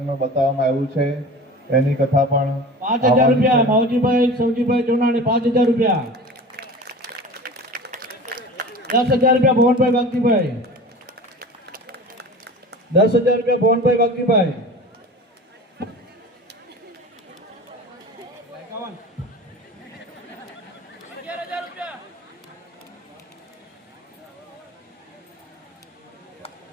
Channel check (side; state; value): both; normal; correlation 0.37